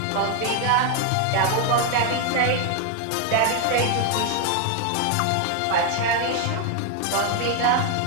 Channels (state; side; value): different; both; correlation 0.01